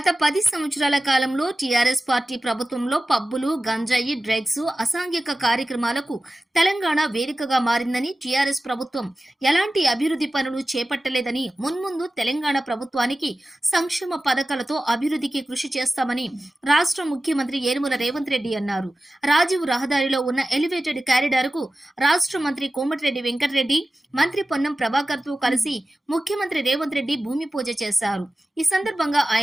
10 సంవత్సరాల కాలంలో టీఆర్ఎస్ పార్టీ ప్రభుత్వంలో పబ్బులు, గంజాయి, డ్రగ్స్, అసాంఘిక కార్యక్రమాలకు తెలంగాణ వేదికగా మారిందని, టీఆర్ఎస్ ప్రభుత్వం ఎలాంటి అభివృద్ధి పనులు చేపట్టలేదని, మున్ముందు తెలంగాణ ప్రభుత్వానికి సంక్షేమ పథకాలతో అభివృద్ధికి కృషి చేస్తామని రాష్ట్ర ముఖ్యమంత్రి యనమల రేవంత్ రెడ్డి అన్నారు. రాజీవ్ రహదారిలో ఉన్న ఎలివేటెడ్ కారిడార్ కు రాష్ట్ర మంత్రి కోమటిరెడ్డి వెంకటరెడ్డి, మంత్రి పొన్నం ప్రభాకర్ తో కలిసి ముఖ్యమంత్రి రేవంత్ రెడ్డి భూమి పూజ చేశారు. ఈ సందర్భంగా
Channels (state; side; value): normal; both; correlation 0.95